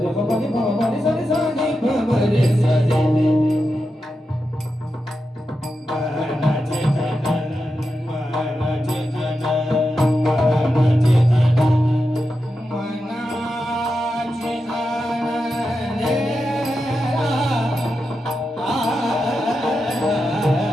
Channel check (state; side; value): normal; both; correlation 0.89